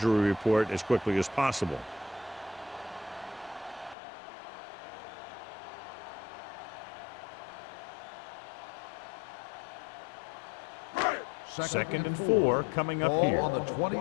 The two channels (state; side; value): drops out; right; at 4.0 s